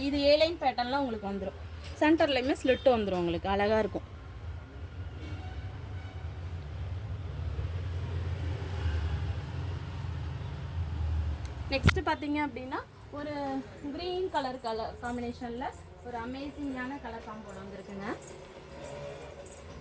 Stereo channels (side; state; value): both; identical; correlation 1.00